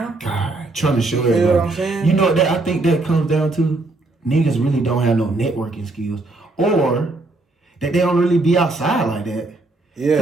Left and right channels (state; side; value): quieter; left; 3.1 dB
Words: God, trying to show everybody. You know what I'm saying? You know that I think that comes down to niggas really don't have no networking skills, or that they don't really be outside like that.